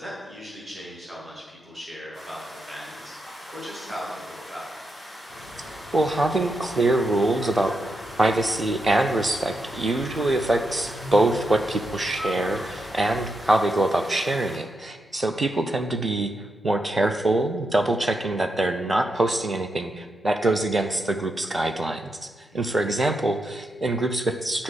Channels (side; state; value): both; normal; correlation 0.84